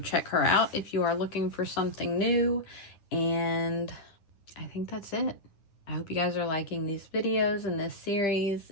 her out if you are looking for something new, and I think that's it. I hope you guys are liking these videos and this series.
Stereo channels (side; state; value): right; late; 10 ms